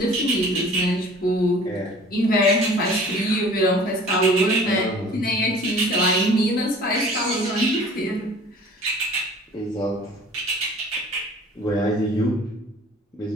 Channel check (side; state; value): both; normal; correlation 0.47